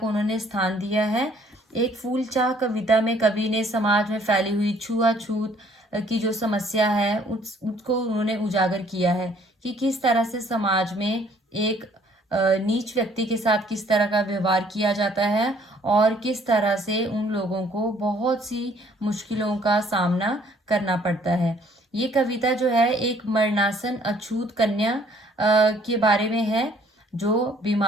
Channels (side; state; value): both; normal; correlation 0.60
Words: उन्होंने स्थान दिया है। एक फूल चाह कविता में कवि ने समाज में फैली हुई छुआछूत की जो समस्या है उसको उन्होंने उजागर किया है कि किस तरह से समाज में एक नीच व्यक्ति के साथ किस तरह का व्यवहार किया जाता है और किस तरह से उन लोगों को बहुत सी मुश्किलों का सामना करना पड़ता है। ये कविता जो है एक मरणासन अछूत कन्या के बारे में है, जो